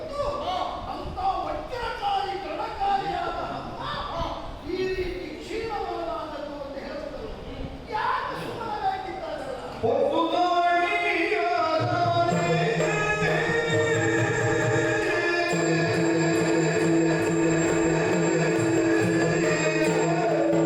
ಅಂತ ವಜ್ರಕಾರಿ ಗಣಕಾರಿಯಾದ ಈ ರೀತಿ ಕ್ಷೀಣವಾದದ್ದು ಅಂತ ಹೇಳುತ್ತದೆ. ಯಾಕೆ ಸುಮ್ಮನಾಗಿದ್ದಾರೆ?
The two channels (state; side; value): identical; both; correlation 1.00